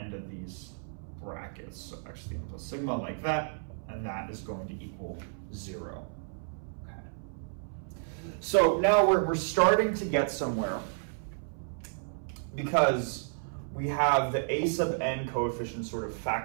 of these brackets. So x to the n plus sigma like that, and that is going to equal 0. Okay. So now we're starting to get somewhere, because we have the a sub n coefficient sort of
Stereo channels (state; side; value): silent; left; 57 dB below the other